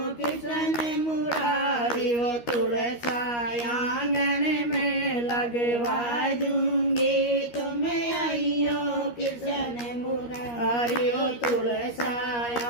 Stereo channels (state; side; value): late; right; 13 ms